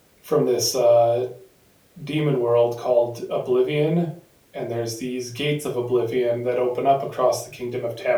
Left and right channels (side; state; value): both; identical; correlation 1.00